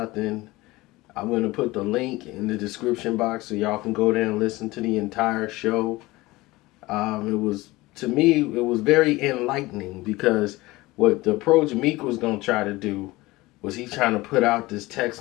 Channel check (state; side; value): quieter; right; 20.2 dB